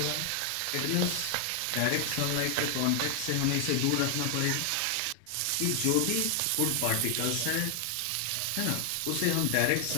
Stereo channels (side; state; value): both; different; correlation 0.00